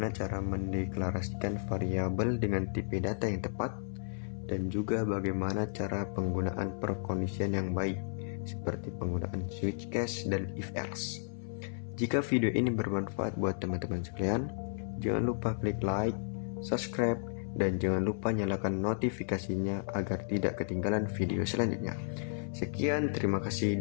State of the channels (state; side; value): silent; right; 56 dB below the other